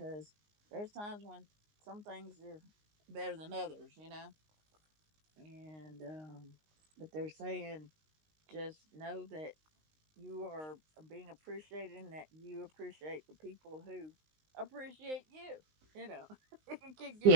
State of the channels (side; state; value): left; late; 19 ms